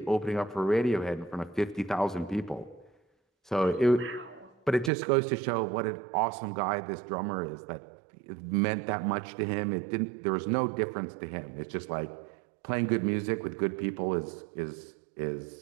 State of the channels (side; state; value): left; drops out; at 4.9 s